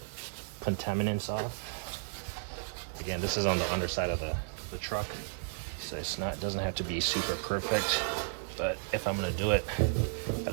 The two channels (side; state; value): left; silent; 56 dB below the other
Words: contaminants off. Again, this is on the underside of the truck, so it doesn't have to be super perfect, but if I'm gonna do it,